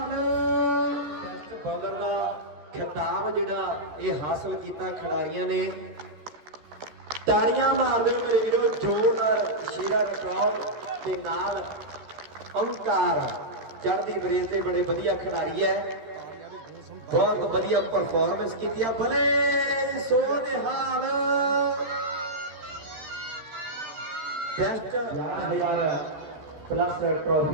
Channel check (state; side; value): late; left; 14 ms